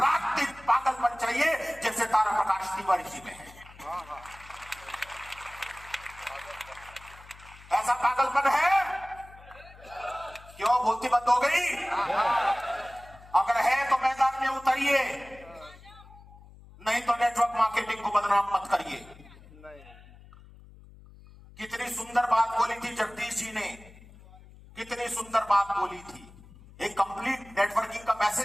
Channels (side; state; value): left; noise; hum, 21 dB below the sound